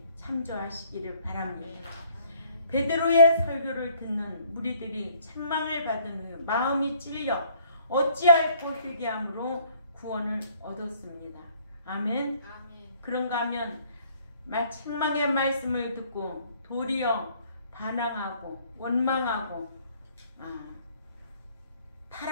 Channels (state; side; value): inverted; both; correlation -0.60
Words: 참조하시기를 바랍니다. 베드로의 설교를 듣는 무리들이 책망을 받은 후 마음이 찔려 어찌할꼬 회개함으로 구원을 얻었습니다. 아멘. 그런가 하면 책망의 말씀을 듣고 도리어 반항하고 원망하고